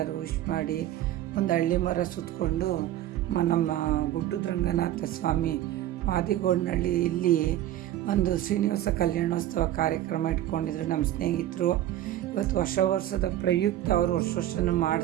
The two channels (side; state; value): left; quieter; 13.0 dB